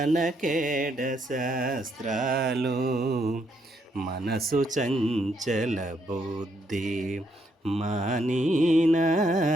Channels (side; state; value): both; normal; correlation 0.75